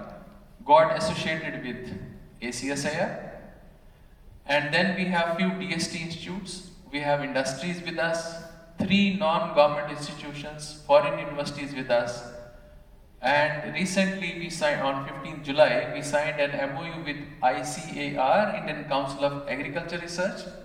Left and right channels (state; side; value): identical; both; correlation 1.00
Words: got associated with AcSIR. And then we have few DST institutes, we have industries with us, 3 non-government institutions, foreign universities with us. And recently we signed, on 15th July, we signed an MOU with ICAR, Indian Council of Agriculture Research.